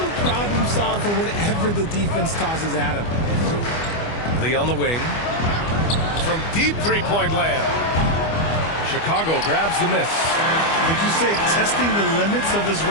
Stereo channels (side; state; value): right; late; 25 ms